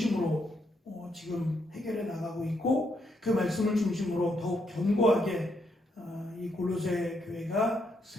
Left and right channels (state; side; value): normal; both; correlation 0.77